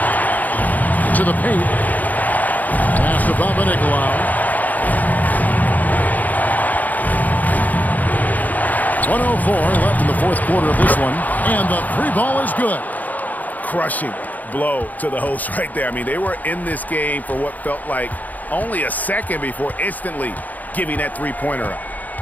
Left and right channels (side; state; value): right; late; 0.080 ms